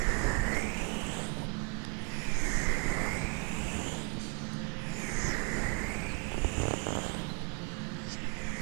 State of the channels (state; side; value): quieter; left; 31.2 dB